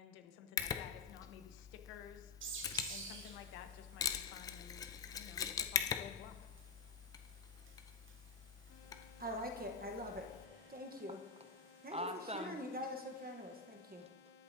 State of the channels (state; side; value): quieter; right; 4.6 dB